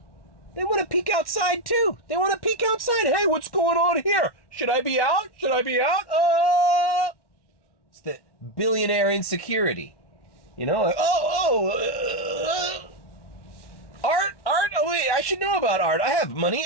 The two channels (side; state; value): right; late; 1.1 ms